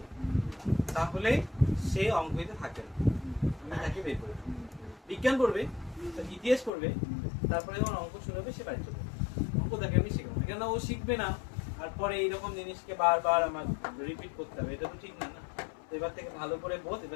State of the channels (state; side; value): drops out; right; at 6.7 s